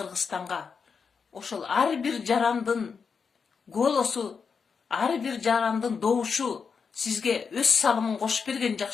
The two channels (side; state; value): right; quieter; 5.8 dB